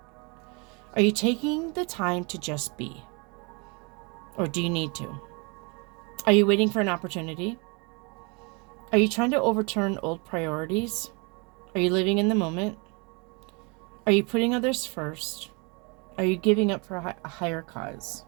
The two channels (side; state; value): left; quieter; 31.4 dB